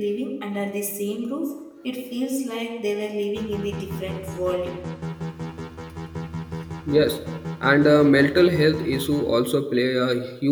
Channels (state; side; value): identical; both; correlation 1.00